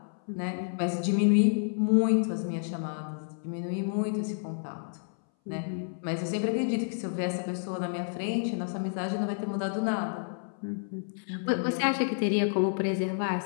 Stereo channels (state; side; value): silent; right; 58 dB below the other